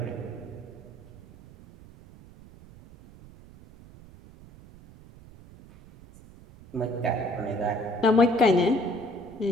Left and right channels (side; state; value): right; noise; rumble, 21 dB below the sound